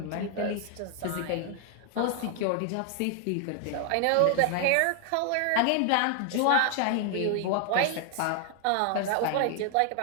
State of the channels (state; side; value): different; both; correlation 0.00